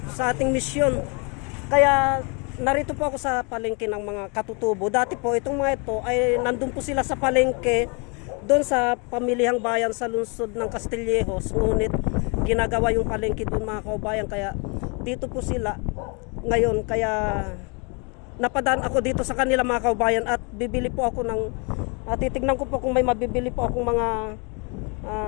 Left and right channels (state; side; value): quieter; right; 33.2 dB